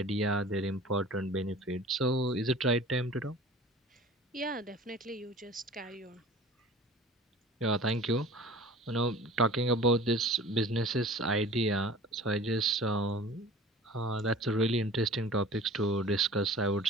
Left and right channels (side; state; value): both; normal; correlation 0.43